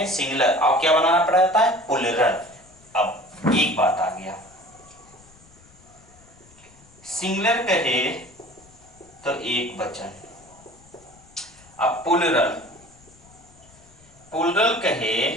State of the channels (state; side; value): noise; left; rumble, 26 dB below the sound